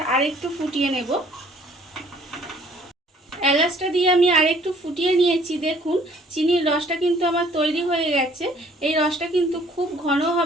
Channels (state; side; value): normal; both; correlation 0.58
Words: আরেকটু ফুটিয়ে নেব। এলাচটা দিয়ে আমি আরেকটু ফুটিয়ে নিয়েছি। দেখুন চিনির রসটা কিন্তু আমার তৈরি হয়ে গেছে। এই রসটা কিন্তু খুব ঘন